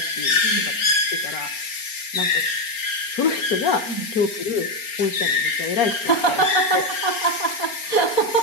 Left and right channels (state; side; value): late; right; 4.3 ms